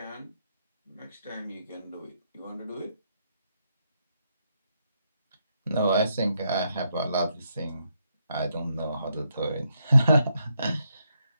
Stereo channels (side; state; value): both; inverted; correlation -0.79